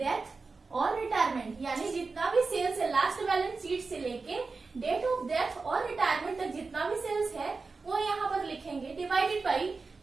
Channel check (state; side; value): quieter; left; 4.2 dB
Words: और retirement, यानी जितना भी sales है last balance sheet से लेके date of death और retirement तक जितना भी सेल्स है वो यहाँ पर लिखेंगे, divided by